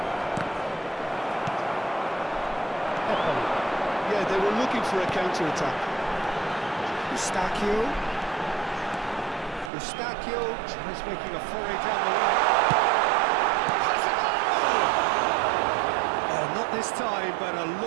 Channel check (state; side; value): drops out; left; at 9.7 s